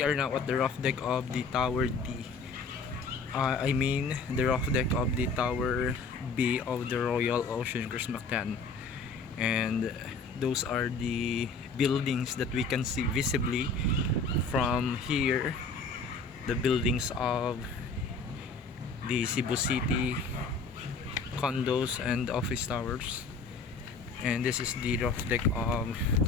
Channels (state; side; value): quieter; right; 4.2 dB